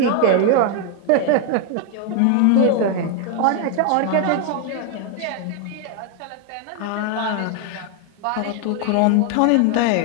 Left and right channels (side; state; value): both; different; correlation 0.00